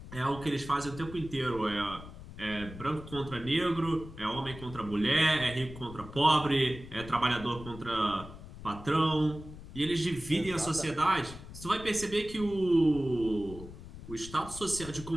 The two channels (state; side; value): noise; left; rumble, 14 dB below the sound